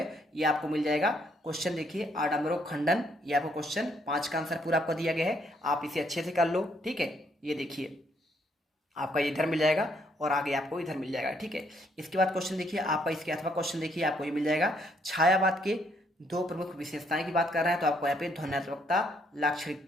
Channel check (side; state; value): both; normal; correlation 0.70